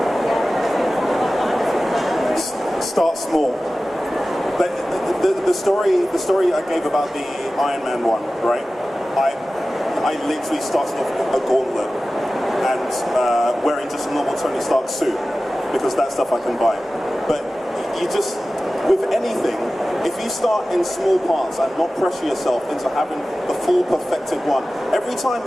start small. But the story I gave about the Iron Man one, right? I literally started off a gauntlet and wearing just a normal Tony Stark suit because that stuff I can buy. But you just, with anything, if you start in small parts and not pressure yourself into having the full perfected one, every time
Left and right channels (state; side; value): normal; both; correlation 0.96